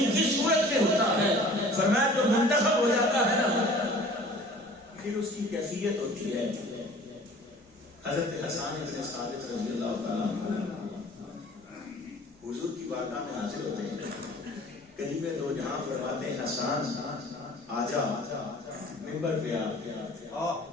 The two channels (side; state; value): both; normal; correlation 0.47